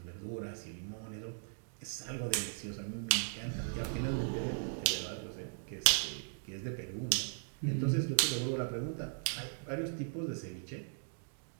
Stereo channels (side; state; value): left; silent; digital silence